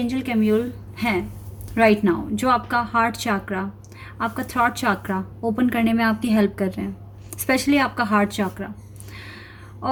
कैम्यूल हैं राइट नाउ, जो आपका हार्ट चाक्रा, आपका थ्रॉट चाक्रा ओपन करने में आपकी हेल्प कर रहे हैं, स्पेशली आपका हार्ट चाक्रा।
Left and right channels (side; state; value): both; identical; correlation 1.00